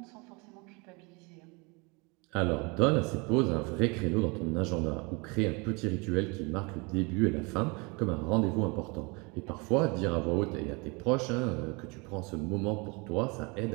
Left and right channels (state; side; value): quieter; left; 28.8 dB